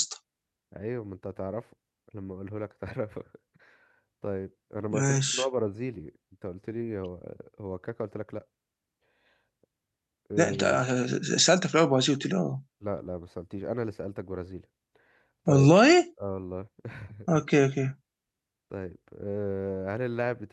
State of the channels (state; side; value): identical; both; correlation 1.00